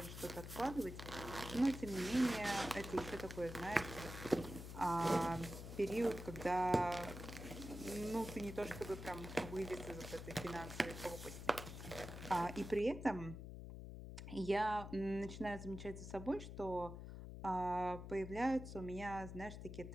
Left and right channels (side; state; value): left; noise; hum, 9 dB below the sound